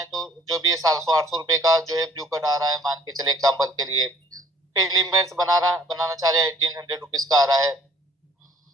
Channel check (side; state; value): both; normal; correlation 0.57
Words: तो जो भी 700-800 रुपए का जो है ब्लू कट आ रहा है, मान के चले एग्जाम्पल के लिए, फिर लिमिट्स बनाना चाह रहे हैं 1800 रुपीज का आ रहा है,